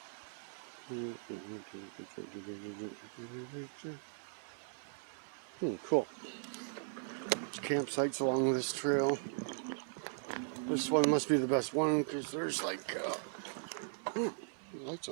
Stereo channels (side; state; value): left; silent; 52 dB below the other